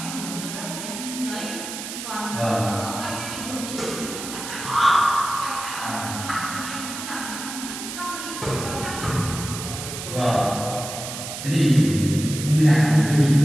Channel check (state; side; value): noise; right; hiss, 8 dB below the sound